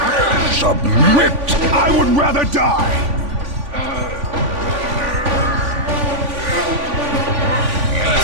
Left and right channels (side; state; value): left; late; 3.5 ms